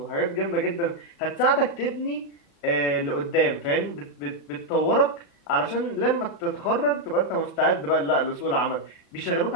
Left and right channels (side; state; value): right; late; 36 ms